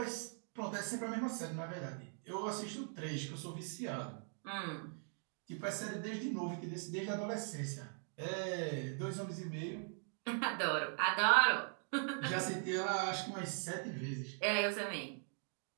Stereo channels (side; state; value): left; silent; 51 dB below the other